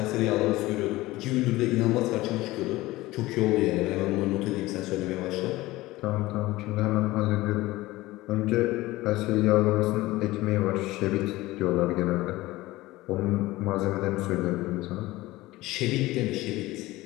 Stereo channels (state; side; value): quieter; right; 18.6 dB